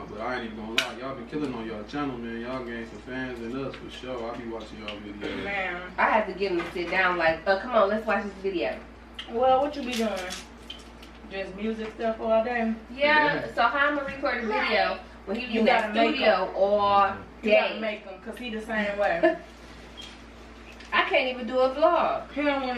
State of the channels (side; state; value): both; identical; correlation 1.00